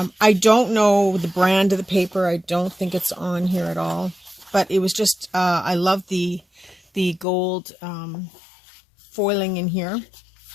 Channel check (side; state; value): right; drops out; at 7.2 s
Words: don't know the brand of the paper. I don't think it's on here at all. But it was just, I love the gold foiling in here.